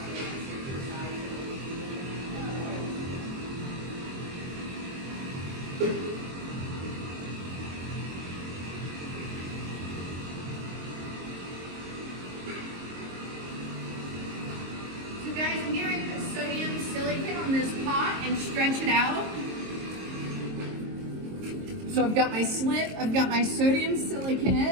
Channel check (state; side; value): late; left; 22 ms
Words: So guys, I'm getting ready to put sodium silicate on this pot and stretch it out. So I've got my slit, I've got my sodium